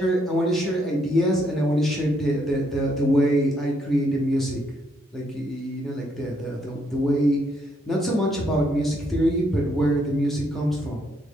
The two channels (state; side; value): normal; both; correlation 0.73